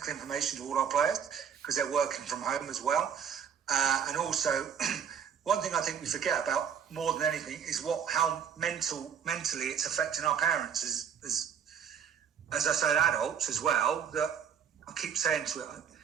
information to all our players, because they're working from home as well. And also, one thing I think we forget about more than anything is how mentally it's affecting our parents as I said, adults as well. That I keep saying to it,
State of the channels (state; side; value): quieter; left; 7.9 dB